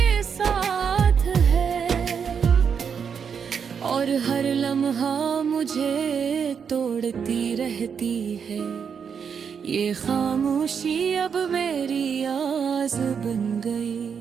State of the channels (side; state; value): left; quieter; 6.8 dB